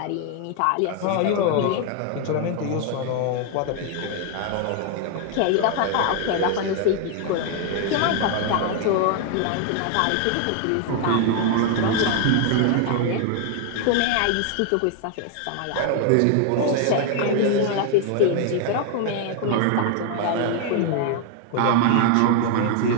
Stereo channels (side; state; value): both; different; correlation 0.00